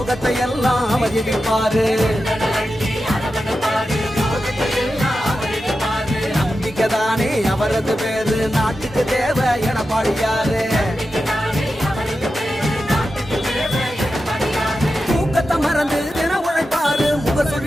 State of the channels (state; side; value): normal; both; correlation 0.91